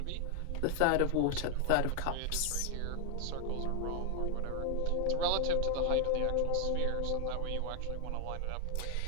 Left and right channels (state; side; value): different; both; correlation 0.00